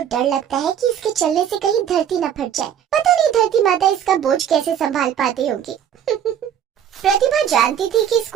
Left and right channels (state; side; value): quieter; left; 9.3 dB